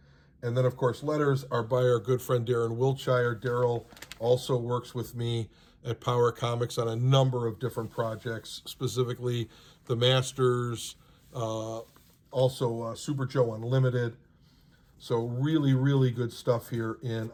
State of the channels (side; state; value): both; identical; correlation 1.00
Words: And then, of course, letters are by our good friend Darren Wiltshire. Daryl also works with me at Power Comics on a number of different projects, specifically the Masters, also Super Joe Unlimited. So really, really good stuff here in